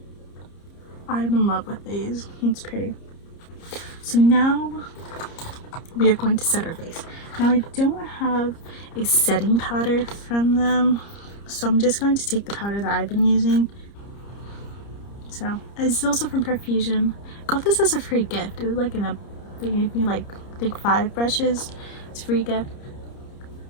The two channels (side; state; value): right; late; 30 ms